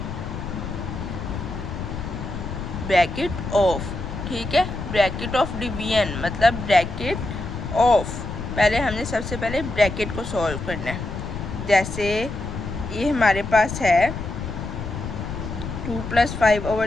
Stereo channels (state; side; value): noise; left; rumble, 7 dB below the sound